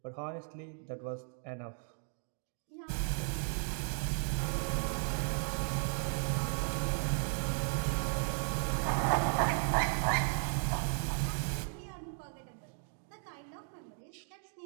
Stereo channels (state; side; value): silent; left; 54 dB below the other